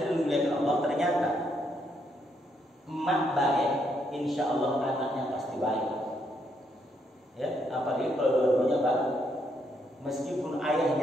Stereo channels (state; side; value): normal; both; correlation 0.75